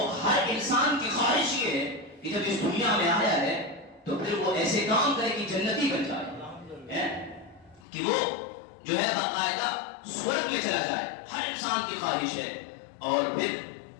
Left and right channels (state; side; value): drops out; right; at 7.9 s